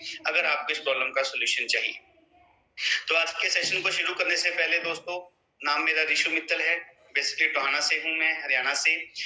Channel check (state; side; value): identical; both; correlation 1.00